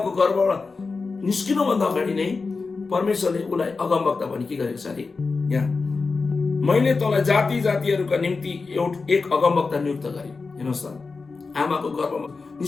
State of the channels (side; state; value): right; quieter; 4.3 dB